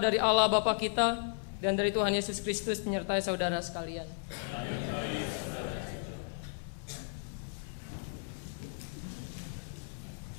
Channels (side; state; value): right; silent; 55 dB below the other